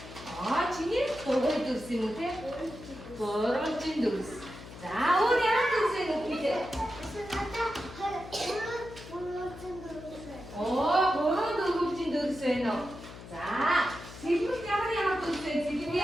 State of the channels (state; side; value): noise; left; hum, 15 dB below the sound